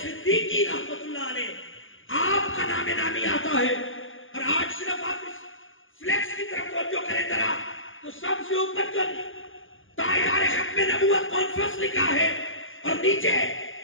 صدیقی رحمت اللہ علیہ، آپ کا نام نامی آتا ہے۔ اور آج صرف آپ اس فلیکس کی طرف توجہ کریں ذرا، تو سب سے اوپر جو تاجدار ختم نبوت کانفرنس لکھا ہے، اور نیچے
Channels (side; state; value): right; late; 0.58 ms